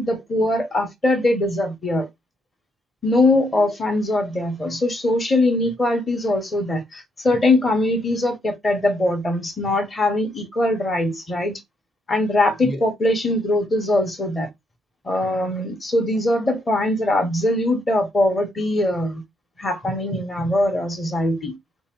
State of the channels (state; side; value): normal; both; correlation 0.75